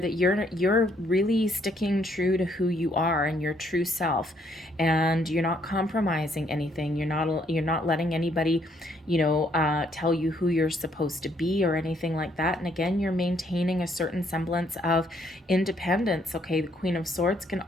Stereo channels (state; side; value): normal; both; correlation 0.69